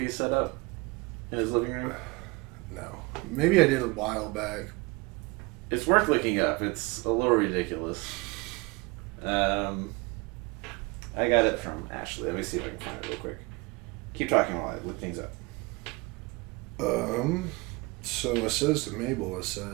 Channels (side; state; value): left; quieter; 25.4 dB